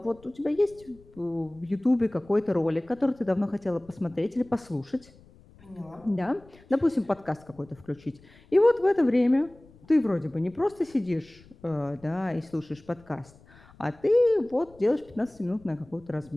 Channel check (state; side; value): noise; left; rumble, 26 dB below the sound